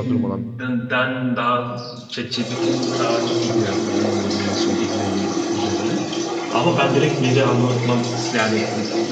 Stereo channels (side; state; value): both; identical; correlation 1.00